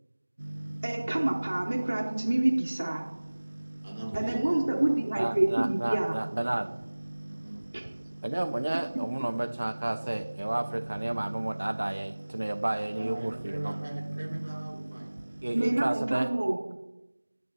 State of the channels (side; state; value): both; inverted; correlation -1.00